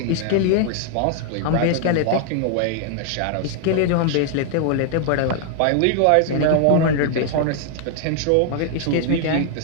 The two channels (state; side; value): different; both; correlation 0.00